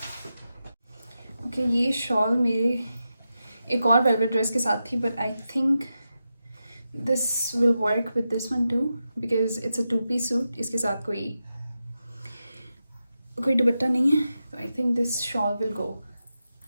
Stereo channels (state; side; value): inverted; both; correlation -0.90